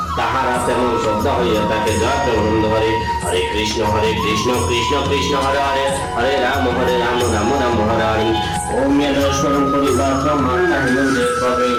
তাহারা তেমন শ্রদ্ধা হইয়া তাকে যত আনন্দ করে। হরে কৃষ্ণ কৃষ্ণ কৃষ্ণ হরে হরে হরে রাম রাম হরে হরে। ওম স্মরণ পরিবার মাতা হিন্দে কবে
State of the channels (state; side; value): identical; both; correlation 1.00